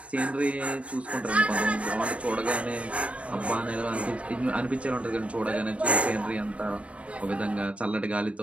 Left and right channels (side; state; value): left; late; 0.063 ms